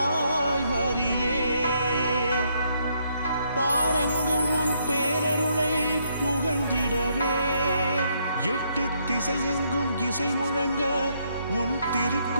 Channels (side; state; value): both; inverted; correlation -0.73